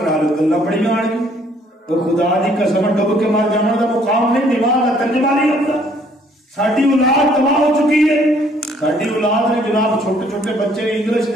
لو گلاں بڑیاں آن گی تو خدا دی قسم ڈب کے مار جانا دا مقام نہیں نماز دا ترجمہ نہیں ہوندا ساڈی اولاد تباہ ہو چکی ہے ساڈی اولاد نے جناب چھوٹے چھوٹے بچے انگلش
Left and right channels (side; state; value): both; normal; correlation 0.62